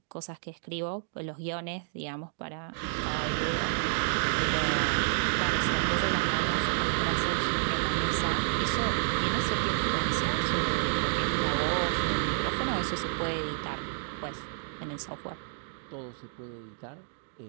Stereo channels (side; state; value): left; silent; digital silence